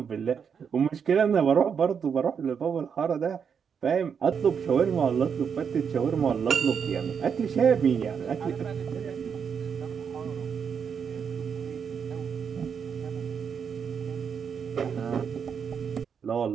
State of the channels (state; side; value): quieter; left; 6.9 dB